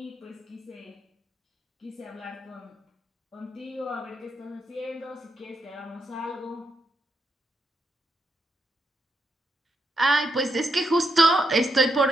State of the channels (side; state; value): both; normal; correlation 0.81